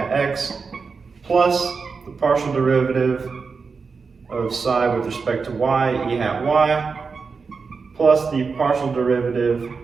x, plus the partial derivative of psi with respect to y, e hat y, plus the partial derivative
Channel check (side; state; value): left; quieter; 5.0 dB